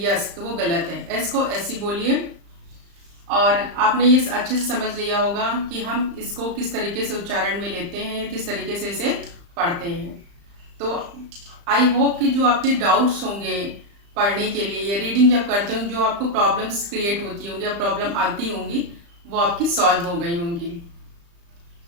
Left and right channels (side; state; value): left; late; 35 ms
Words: यस, तो वो गलत है। एस को ऐसी बोलिए। और आपने ये अच्छे से समझ लिया होगा कि हम इसको किस तरीके से उच्चारण में लेते हैं, किस तरीके से इसे पढ़ते हैं। तो आई होप कि जो आपके डाउट्स होंगे पढ़ने के लिए या रीडिंग जब करते होंगे, जो आपको प्रॉब्लम्स क्रिएट होती होंगी या प्रॉब्लम आती होंगी, वो आपकी सॉल्व हो गई होंगी।